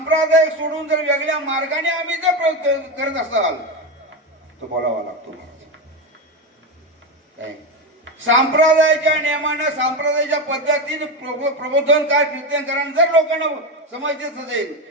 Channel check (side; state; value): both; normal; correlation 0.15